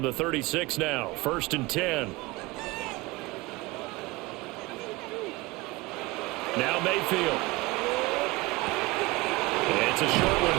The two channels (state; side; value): quieter; left; 22.3 dB